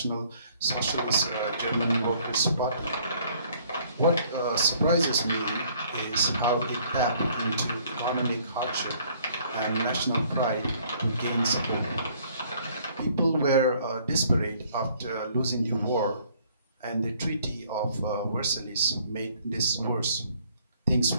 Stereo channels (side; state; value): both; inverted; correlation -0.61